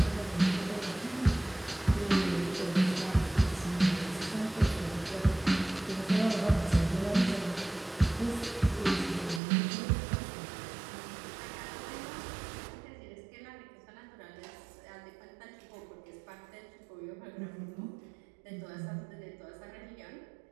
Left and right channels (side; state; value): left; drops out; at 9.4 s